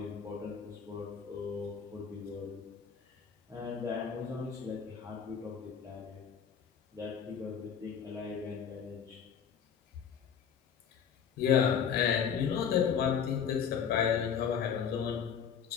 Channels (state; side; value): quieter; right; 7.4 dB